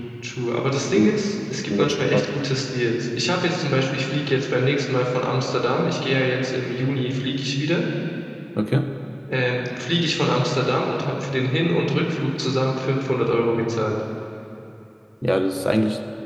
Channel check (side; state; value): both; identical; correlation 1.00